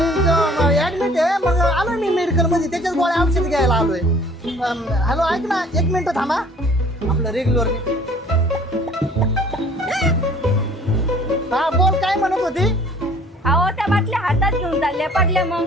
ऍडमिट आहे. मग आलोय मी मेडिकल मध्ये, त्याच्याच गोळ्या औषध घ्यायला आलोय. हॅलो ऐक ना, 1 मिनिट थांबा. आपलं रेग्युलर. हा बोल, काय म्हणत होती? अहो त्या बाटल्या हातात घेऊन चालल्या, पडल्या मग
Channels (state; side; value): normal; both; correlation 0.53